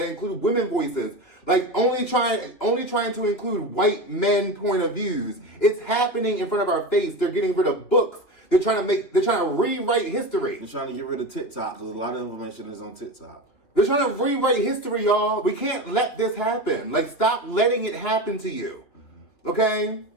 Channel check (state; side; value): late; right; 3.2 ms